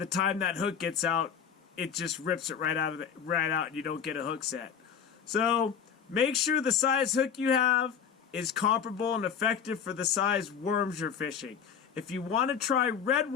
time that hook gets out, it just rips it right out and you don't get a hook set. So make sure the size hook you have is comparable and effective for the size worms you're fishing. If you want to try red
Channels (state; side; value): quieter; right; 7.5 dB